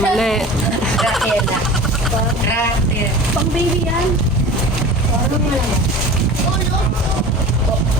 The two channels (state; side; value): normal; both; correlation 0.37